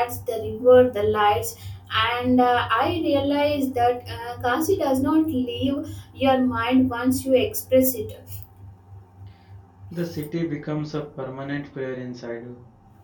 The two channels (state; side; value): identical; both; correlation 1.00